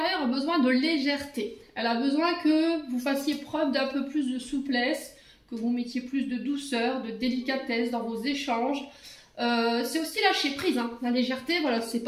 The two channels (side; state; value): both; identical; correlation 1.00